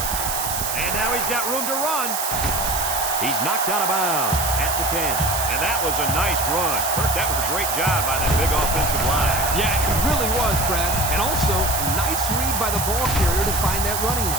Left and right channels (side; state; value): right; noise; hiss, 2 dB below the sound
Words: And now he's got room to run. He's knocked out of bounds at the 10. And that was a nice run. Kirk, that was a great job by that big offensive line. Yeah, it really was, Brad. And also, a nice read by the ball carrier to find that running